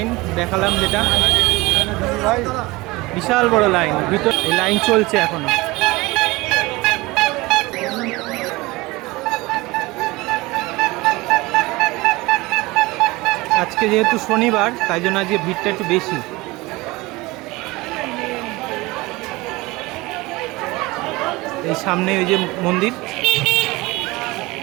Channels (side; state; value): left; quieter; 21.8 dB